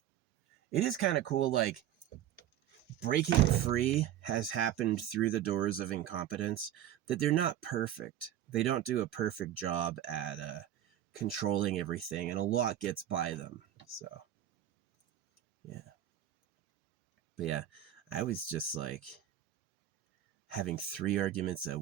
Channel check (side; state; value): left; quieter; 11.6 dB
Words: It is kind of cool, like breaking free has happened through the doors of incompetence, that they're not perfect. They don't do a perfect job at controlling everything, and a lot gets by them. So, yeah. But yeah, I was just like having 3 arguments at